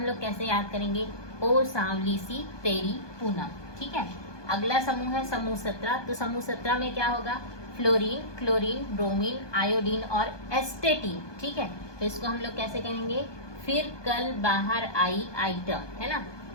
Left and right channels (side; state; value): right; late; 1.2 ms